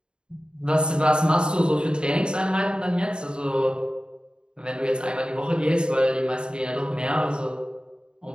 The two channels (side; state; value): left; late; 0.050 ms